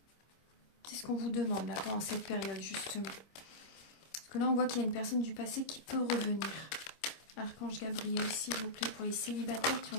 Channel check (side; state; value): right; late; 25 ms